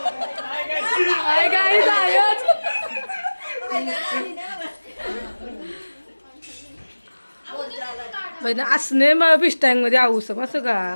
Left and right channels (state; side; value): inverted; both; correlation -1.00